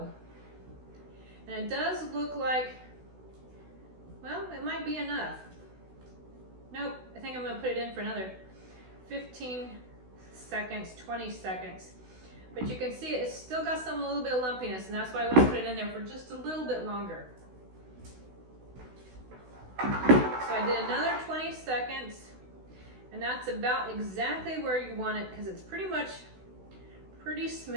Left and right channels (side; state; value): left; late; 16 ms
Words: And it does look like, well, it might be enough. Nope, I think I'm going to put it in for another 15 seconds, 20 seconds. But you can see it's still got a little bit of lumpiness, and that's why I want to put it in there for just a little bit longer. So I did another 20 seconds. And that's about exactly where you want it because it's pretty much pretty